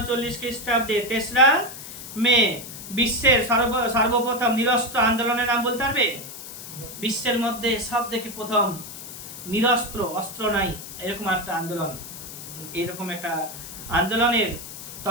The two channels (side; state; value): left; noise; hiss, 12 dB below the sound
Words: খ্রিস্টাব্দে 3রা মে। বিশ্বের সর্বপ্রথম নিরস্ত্র আন্দোলনের নাম বলতে পারবে, বিশ্বের মধ্যে সব থেকে প্রথম নিরস্ত্র, অস্ত্র নাই এরকম একটা আন্দোলন, এরকম একটা আন্দোলনের